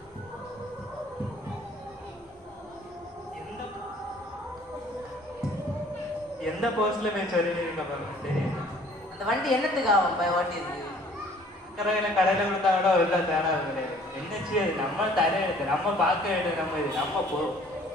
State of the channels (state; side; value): normal; both; correlation 0.56